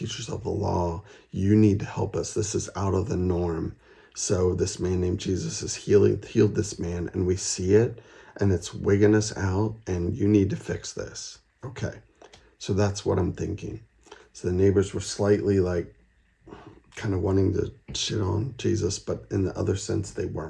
of the law. You need to help us. This is out of the norm. So this man named Jesus is healed this man, and we see it, and it's wigging us out, and you need to fix this. Okay, so that's what I'm thinking. So the neighbors were slightly like kind of wanting to shit on Jesus, but in the other sense, they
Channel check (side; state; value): both; identical; correlation 1.00